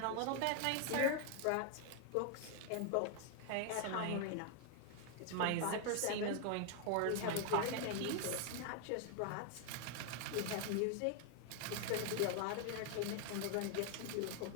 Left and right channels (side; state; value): both; different; correlation 0.00